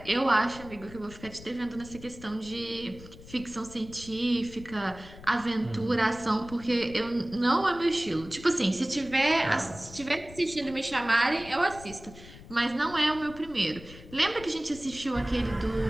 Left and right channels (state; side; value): noise; left; rumble, 17 dB below the sound